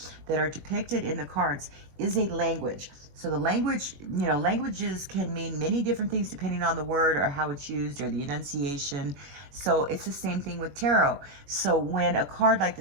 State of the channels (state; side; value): late; left; 21 ms